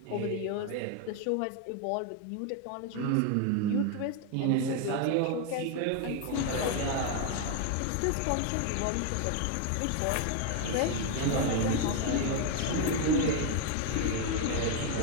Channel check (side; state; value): both; different; correlation 0.01